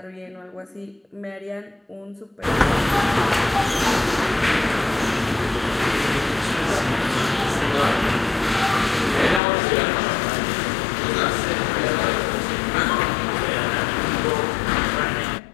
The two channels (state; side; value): drops out; right; at 9.4 s